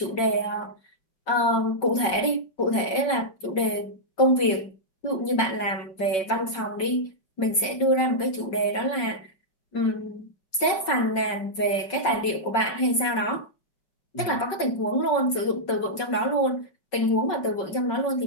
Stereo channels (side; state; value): right; late; 5.3 ms